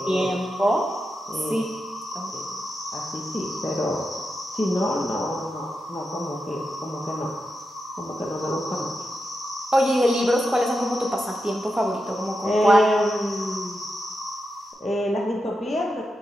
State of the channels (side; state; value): both; normal; correlation 0.88